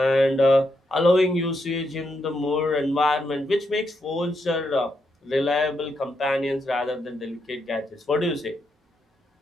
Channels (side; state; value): both; normal; correlation 0.81